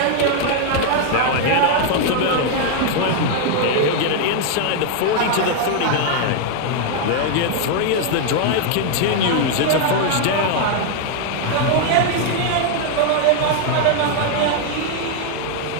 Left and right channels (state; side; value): different; both; correlation 0.00